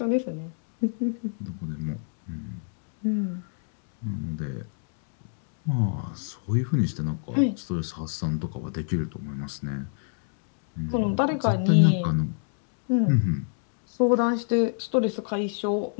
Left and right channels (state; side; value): silent; right; 60 dB below the other